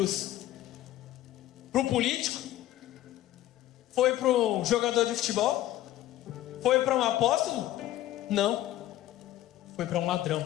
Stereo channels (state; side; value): quieter; right; 14.2 dB